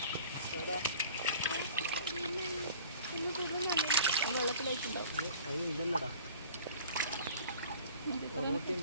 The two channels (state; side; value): inverted; both; correlation -0.47